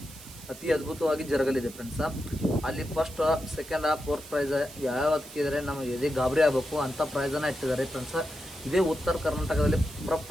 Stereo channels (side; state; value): right; noise; hiss, 17 dB below the sound